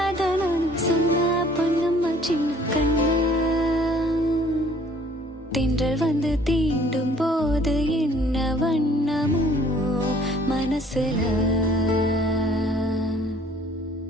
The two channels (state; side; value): normal; both; correlation 0.56